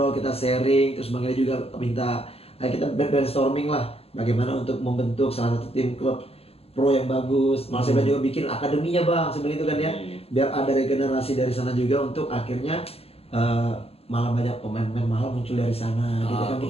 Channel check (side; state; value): right; late; 0.29 ms